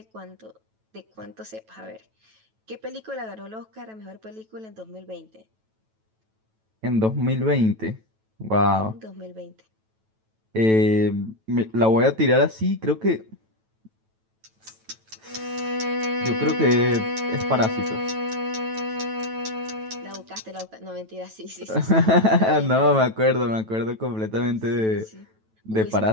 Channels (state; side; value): late; left; 9.1 ms